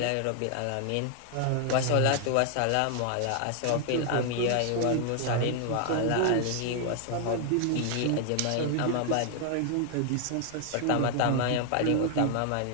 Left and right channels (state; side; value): different; both; correlation 0.00